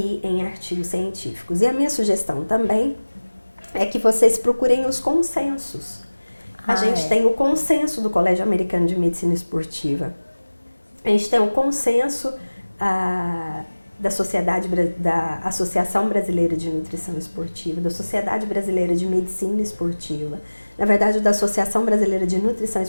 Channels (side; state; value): both; inverted; correlation -1.00